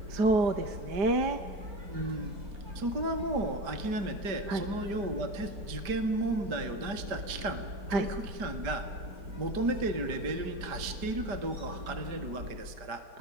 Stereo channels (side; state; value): left; late; 5.0 ms